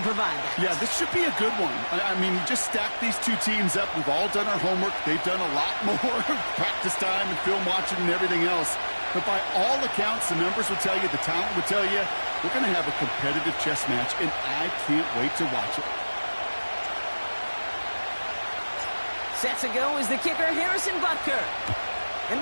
provide that. Yeah, this should be a good one. I mean, you just stack these two teams up. We've all done our homework. They've done a lot more practice time and film watching and everything else. But by all accounts, the numbers will tell you, the talent will tell you, we're going to have a competitive chess match, and I can't wait to watch it. Set to go is the kicker, Harrison Butker.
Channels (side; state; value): both; inverted; correlation -1.00